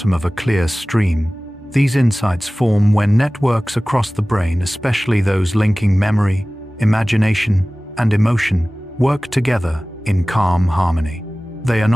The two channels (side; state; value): both; normal; correlation 0.98